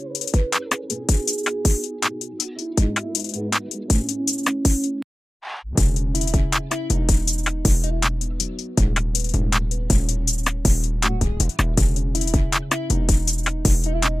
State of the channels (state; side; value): normal; both; correlation 0.96